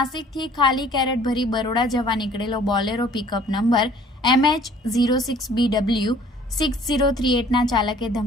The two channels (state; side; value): normal; both; correlation 0.54